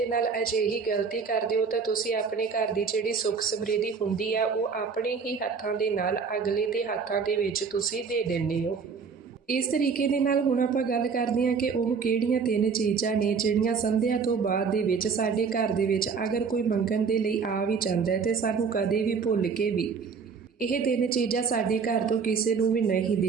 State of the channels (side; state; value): left; quieter; 5.6 dB